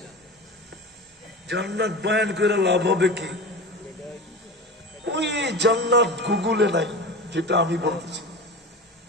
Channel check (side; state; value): both; normal; correlation 0.30